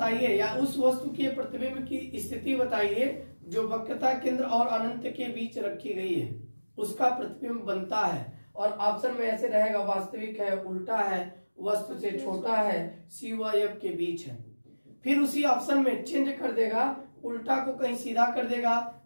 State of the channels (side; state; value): both; inverted; correlation -1.00